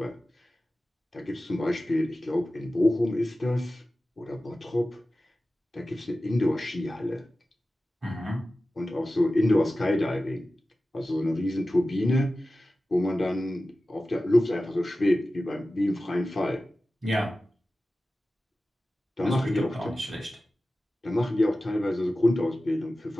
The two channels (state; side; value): normal; both; correlation 0.95